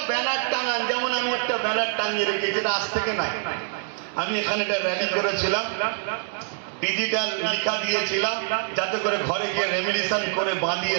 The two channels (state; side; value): silent; left; 61 dB below the other